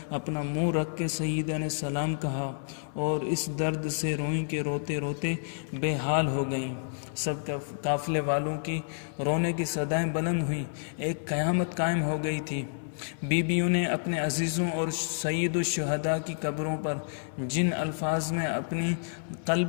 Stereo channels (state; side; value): silent; right; 57 dB below the other